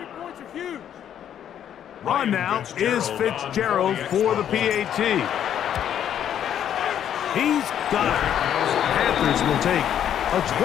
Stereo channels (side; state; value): right; quieter; 9.8 dB